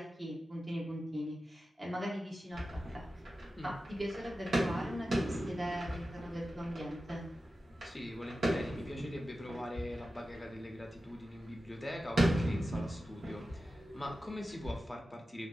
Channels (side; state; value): both; normal; correlation 0.93